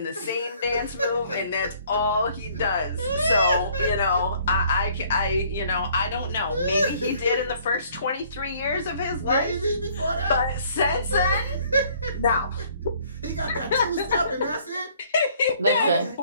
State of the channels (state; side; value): inverted; both; correlation -0.60